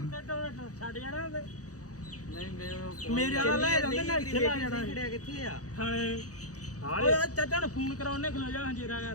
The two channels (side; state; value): right; late; 0.66 ms